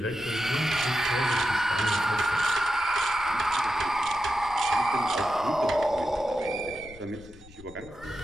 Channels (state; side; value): noise; left; rumble, 20 dB below the sound